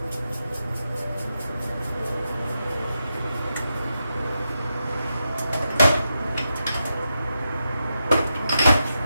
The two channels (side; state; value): both; inverted; correlation -0.87